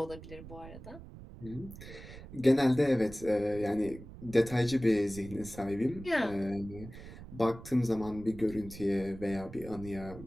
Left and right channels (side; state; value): right; noise; rumble, 15 dB below the sound